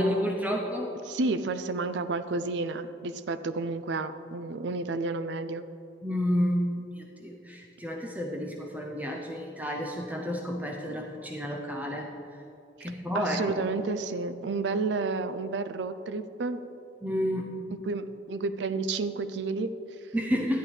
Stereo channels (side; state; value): both; normal; correlation 0.49